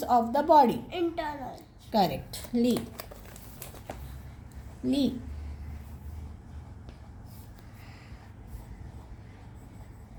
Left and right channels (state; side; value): identical; both; correlation 1.00